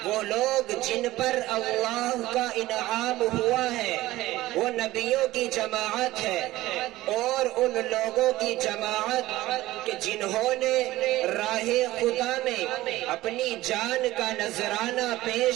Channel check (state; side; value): quieter; left; 16.9 dB